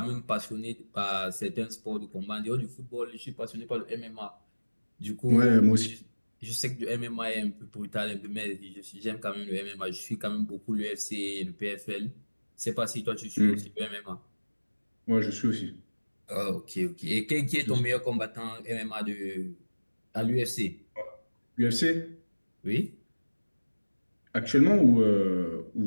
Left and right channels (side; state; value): both; inverted; correlation -1.00